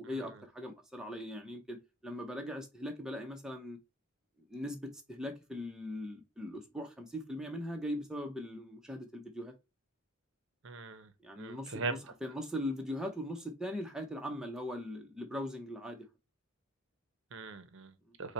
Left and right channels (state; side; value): normal; both; correlation 0.55